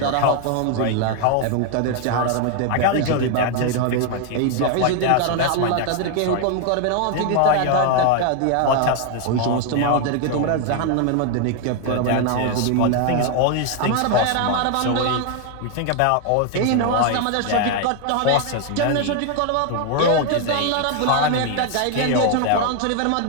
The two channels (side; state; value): both; different; correlation 0.00